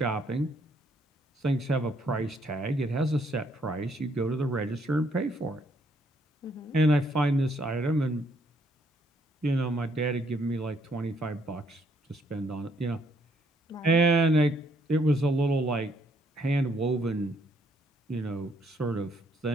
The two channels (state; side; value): normal; both; correlation 0.69